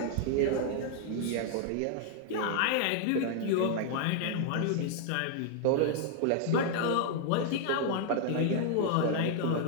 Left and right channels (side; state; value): both; different; correlation 0.00